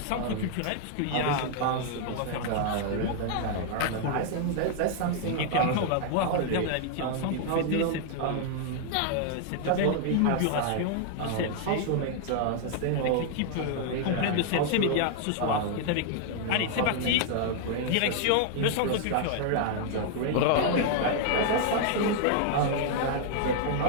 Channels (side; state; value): both; different; correlation 0.00